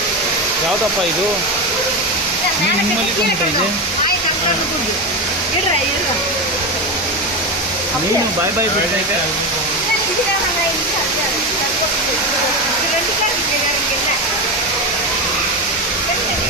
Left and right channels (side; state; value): both; normal; correlation 0.17